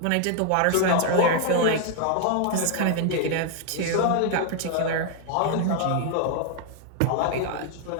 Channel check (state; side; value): different; both; correlation 0.00